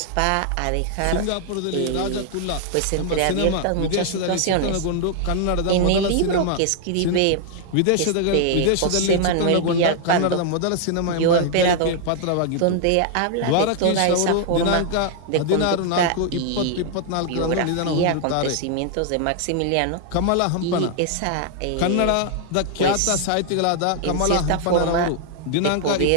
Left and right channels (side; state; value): both; different; correlation 0.00